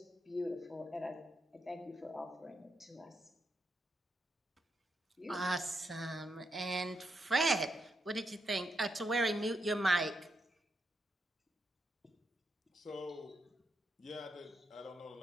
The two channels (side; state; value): both; normal; correlation 0.82